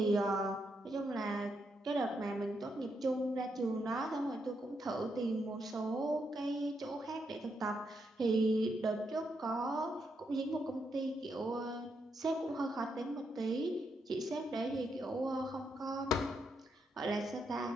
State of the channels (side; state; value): both; normal; correlation 0.80